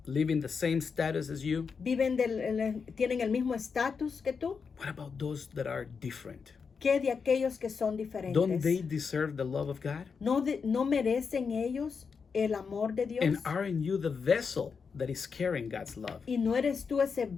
Live in the same status as you? ¿Tienen el mismo estatus que tú? What about those that are different? ¿Qué de aquellos que son diferentes? Don't they deserve the love of God? ¿No merecen ellos el amor de Dios? And aren't you the vessel that is carrying God's love? ¿Y no eres tú ese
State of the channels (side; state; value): right; quieter; 5.6 dB